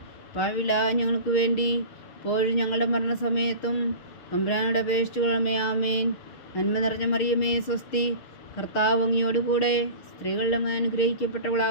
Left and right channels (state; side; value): late; right; 6.5 ms